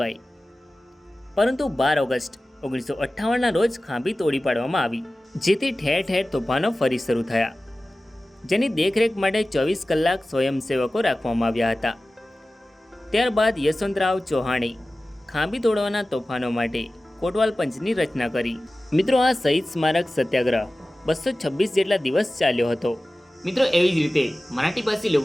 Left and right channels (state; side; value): normal; both; correlation 0.96